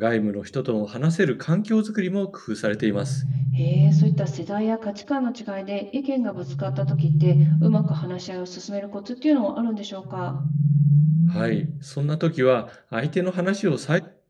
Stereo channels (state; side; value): identical; both; correlation 1.00